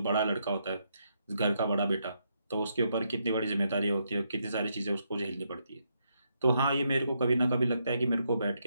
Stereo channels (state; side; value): inverted; both; correlation -0.78